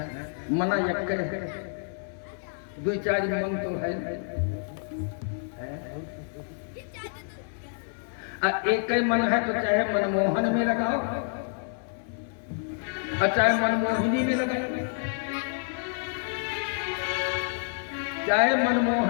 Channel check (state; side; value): silent; right; 59 dB below the other